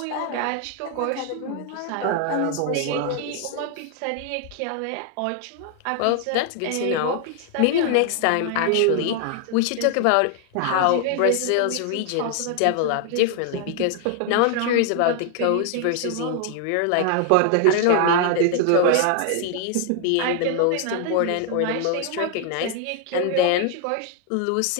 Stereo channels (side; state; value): both; different; correlation 0.00